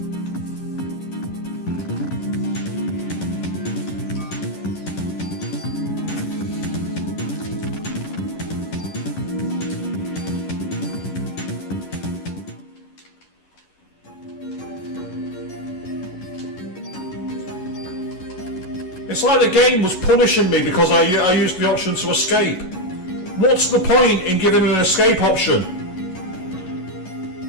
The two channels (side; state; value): right; late; 11 ms